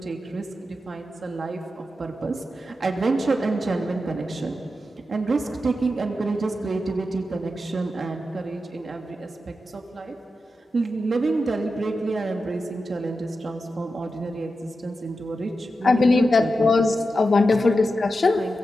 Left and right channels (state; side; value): normal; both; correlation 0.89